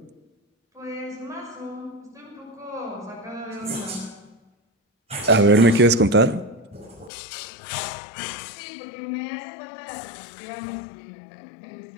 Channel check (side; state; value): right; drops out; at 7.1 s